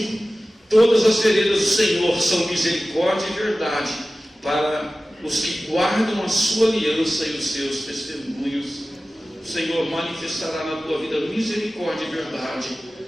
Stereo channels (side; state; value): both; normal; correlation 0.96